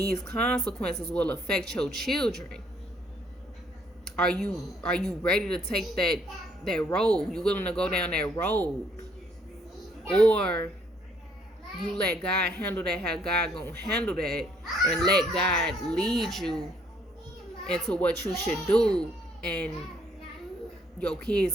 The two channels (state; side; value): normal; both; correlation 0.67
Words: consequences will affect your children. Are you ready to take that road? You willing to go down that road? Or you let God handle that how God gonna handle that, and let God lead you into what you should do, and your